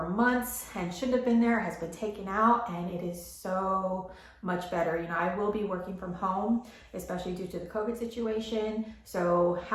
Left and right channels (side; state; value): both; identical; correlation 1.00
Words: months and shouldn't have been there has been taken out, and it is so much better. You know, I will be working from home, especially due to the COVID situation. So